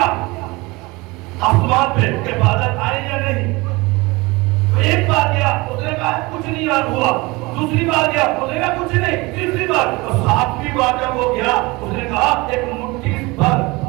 आसमान पे के बादल आए या नहीं। तो एक बार गया, उसने कहा कुछ नहीं यार हुआ। दूसरी बार गया, उसने कहा कुछ नहीं। तीसरी बार और 7वीं बार जब वो गया, उसने कहा एक मुट्ठी भर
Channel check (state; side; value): quieter; left; 23.6 dB